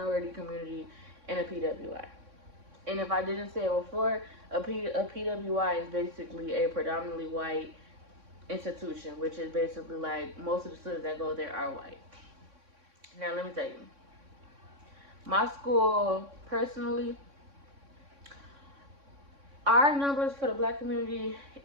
community in a PWI. And if I didn't say it before, a PWI is basically a predominantly white institution, which is basically like most of the students that go there are white. Now let me tell you, my school personally, our numbers for the black community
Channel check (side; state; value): left; late; 3.6 ms